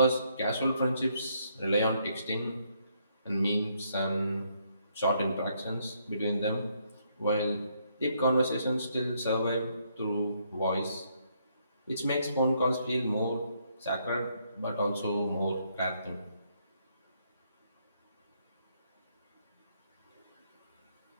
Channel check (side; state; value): both; inverted; correlation -0.72